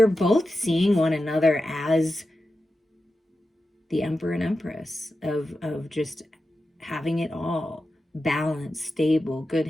both seeing one another as the Emperor and Empress of just having it all. Balance, stable, good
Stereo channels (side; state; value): both; normal; correlation 0.91